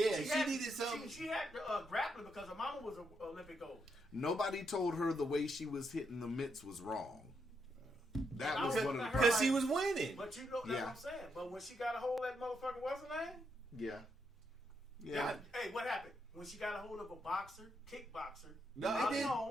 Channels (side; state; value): both; normal; correlation 0.79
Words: she had- needed something. She had grappling because her mama was an Olympic gold. Nobody told her the way she was hitting the mitts was wrong. That was one of the Because she was winning. But you know that's Yeah. what I'm saying. But when she got a hold of that motherfucker, what's her name? yeah. Hey, what happened? When she got a hold of a boxer, kickboxer, No, Holly it